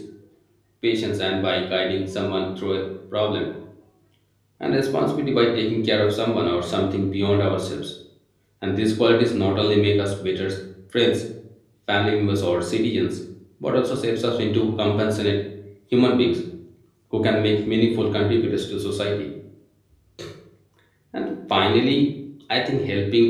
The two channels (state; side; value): identical; both; correlation 1.00